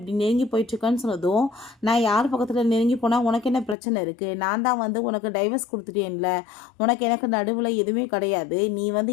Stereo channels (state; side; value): drops out; right; at 3.8 s